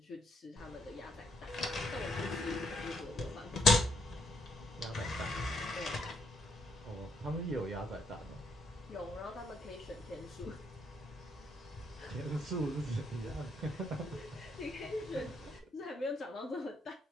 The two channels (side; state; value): both; normal; correlation 0.73